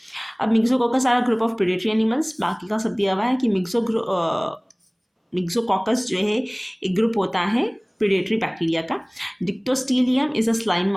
अब मिक्सोकोकस सारा ग्रुप ऑफ प्रेडेटरी एनिमल्स, बाकी का सब दिया हुआ है कि मिक्सोकोकस जो है एक ग्रुप होता है प्रेडेटरी बैक्टीरिया का। डिक्टोस्टीलियम इज अ स्लाइम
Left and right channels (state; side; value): identical; both; correlation 1.00